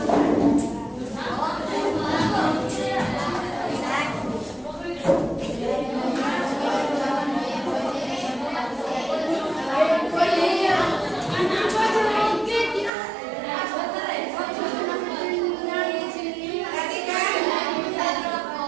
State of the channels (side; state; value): left; drops out; at 12.9 s